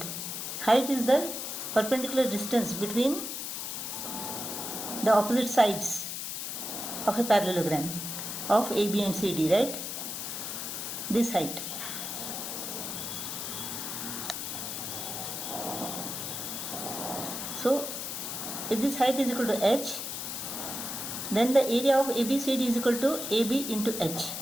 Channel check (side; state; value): left; noise; hiss, 5 dB below the sound